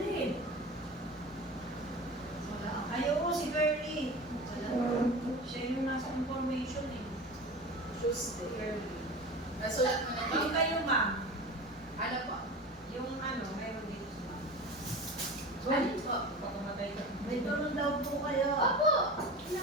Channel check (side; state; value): both; normal; correlation 0.32